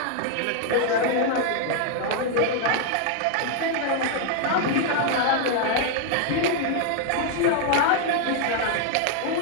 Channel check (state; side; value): different; both; correlation 0.00